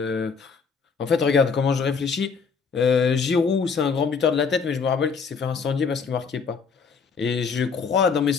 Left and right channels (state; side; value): quieter; right; 5.5 dB